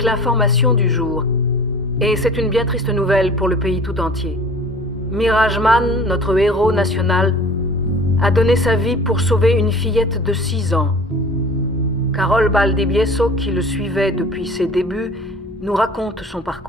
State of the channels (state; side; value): normal; both; correlation 0.44